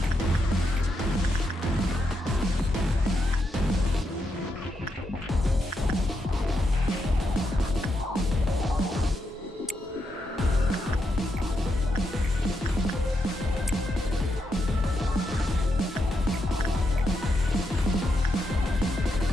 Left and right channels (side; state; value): both; normal; correlation 0.82